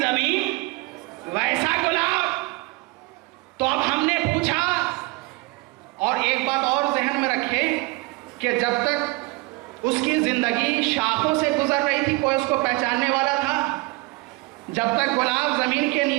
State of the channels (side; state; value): left; quieter; 23.9 dB